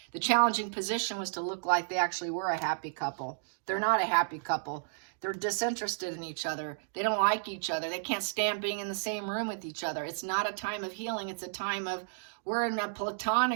The challenging position was to look like they actually were a happy couple. They're not a happy couple. They're disinterested in each other. They don't like each other. They can't stand being in the same room with each other. It's not a time of healing. It's a time of, we're in a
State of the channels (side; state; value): left; silent; digital silence